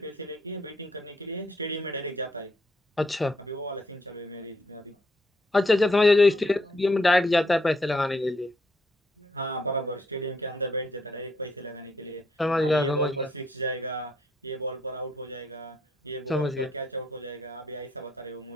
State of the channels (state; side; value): normal; both; correlation 0.72